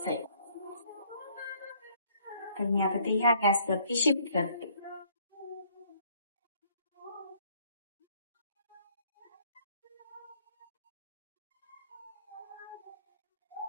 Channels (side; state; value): both; inverted; correlation -0.63